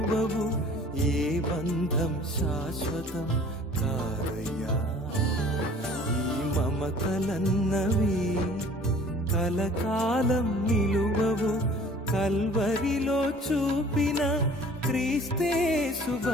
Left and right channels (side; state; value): both; normal; correlation 0.50